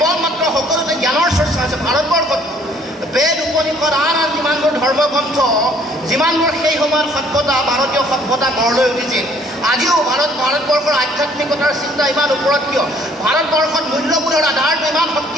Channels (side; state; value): both; normal; correlation 0.60